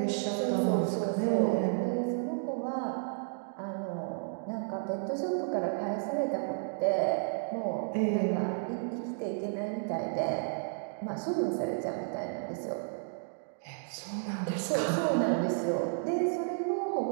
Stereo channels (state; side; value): silent; left; digital silence